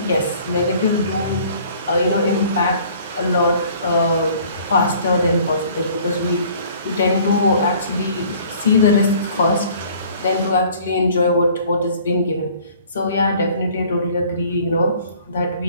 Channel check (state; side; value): inverted; both; correlation -0.53